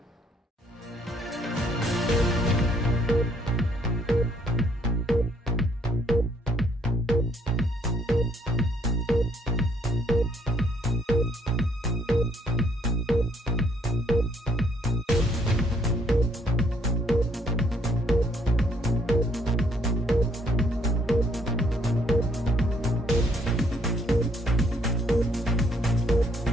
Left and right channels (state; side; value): normal; both; correlation 0.67